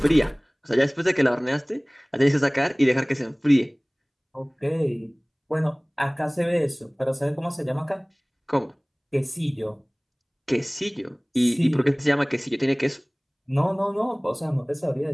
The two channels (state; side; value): identical; both; correlation 1.00